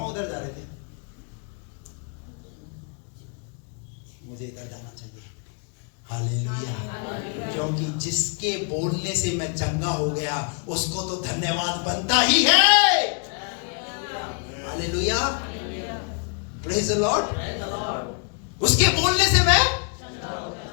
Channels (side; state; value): right; quieter; 39.8 dB